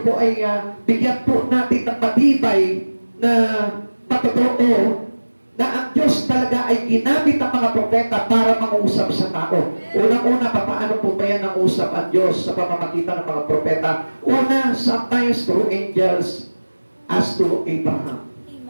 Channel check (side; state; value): both; inverted; correlation -1.00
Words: ay bigyan po natin ng matibay na patotoo na ang Diyos talaga ay ginamit ng mga propeta para mangusap sa tao. Unang-una, paano po ba yan ang usap ang Diyos sa pamamagitan ng mga propeta? Una, sometimes through angels as to Abraham.